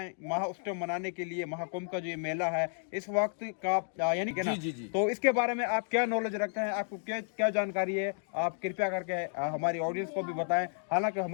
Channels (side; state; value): right; silent; digital silence